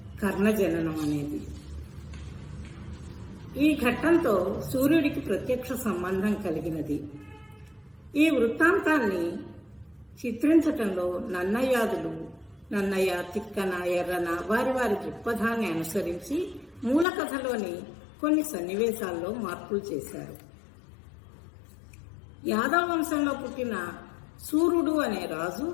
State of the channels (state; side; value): drops out; right; at 17.1 s